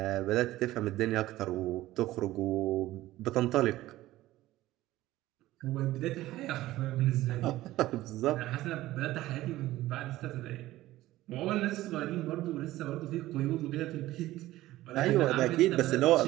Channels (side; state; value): left; quieter; 16.1 dB